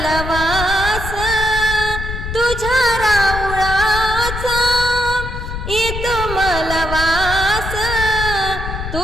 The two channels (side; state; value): left; noise; rumble, 6 dB below the sound